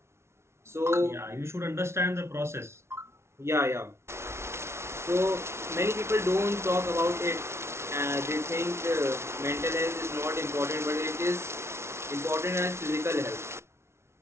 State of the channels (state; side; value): late; left; 0.13 ms